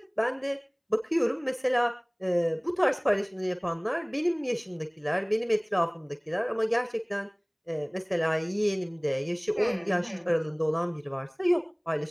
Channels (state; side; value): identical; both; correlation 1.00